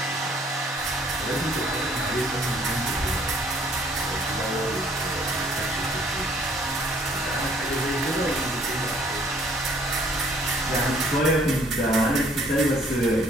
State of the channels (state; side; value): normal; both; correlation 0.61